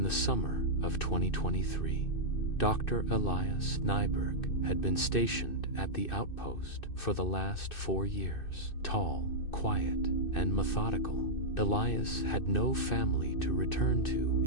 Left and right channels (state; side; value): late; right; 2.6 ms